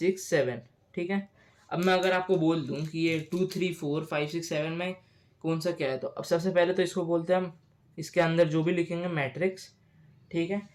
7, ठीक है। अब मैं अगर आपको बोल दूं कि ये 2 3 4 5 6 7 में कौन सा क्या है, तो अब सबसे पहले तो इसको बोलते हैं हम, इसके अंदर जो भी लिखेंगे मैट्रिक्स, ठीक है।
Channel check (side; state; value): both; identical; correlation 1.00